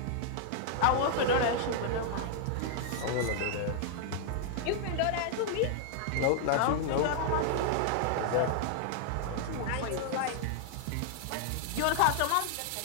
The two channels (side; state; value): both; different; correlation -0.01